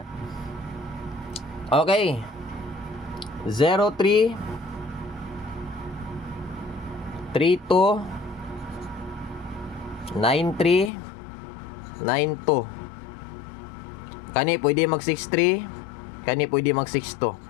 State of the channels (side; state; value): right; drops out; at 10.9 s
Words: Okay. 03 32 93 92. Kani pwede mag 63, kani pwede mag 62.